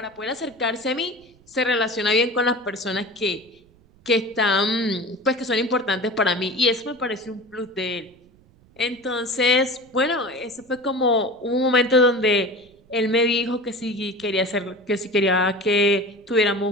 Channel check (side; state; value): right; noise; rumble, 30 dB below the sound